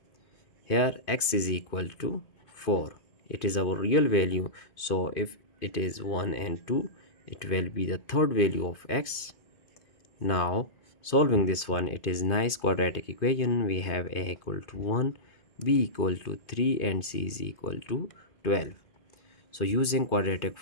Here x is equal to 4, it is our real value, so if it is 1 and 2, it will be the third value of x. Now solving this one, it is nice quadratic equation. We have a equal to 1, b equal to 3, and c is equal to 12. So using quadratic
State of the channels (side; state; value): right; late; 2.5 ms